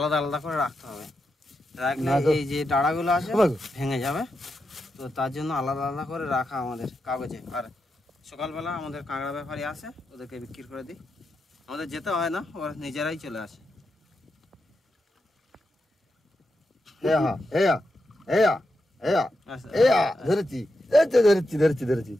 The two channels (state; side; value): normal; both; correlation 0.86